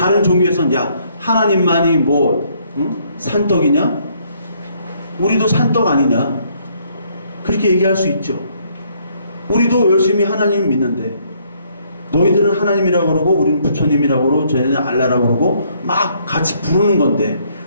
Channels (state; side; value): inverted; both; correlation -0.67